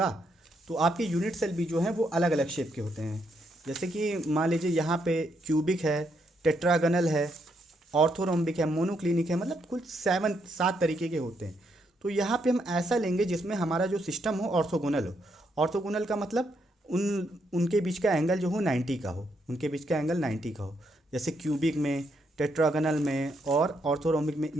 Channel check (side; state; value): both; normal; correlation 0.77